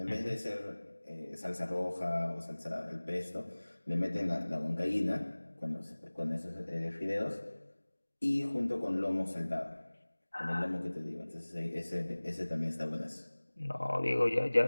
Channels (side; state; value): both; inverted; correlation -1.00